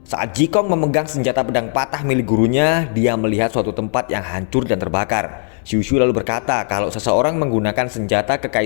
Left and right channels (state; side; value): silent; right; 67 dB below the other